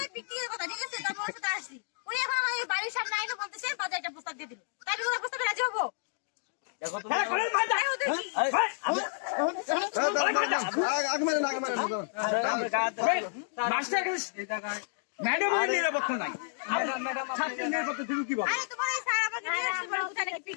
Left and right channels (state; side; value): silent; right; digital silence